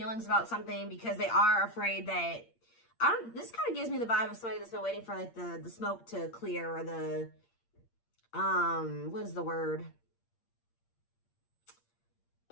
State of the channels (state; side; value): late; right; 8.7 ms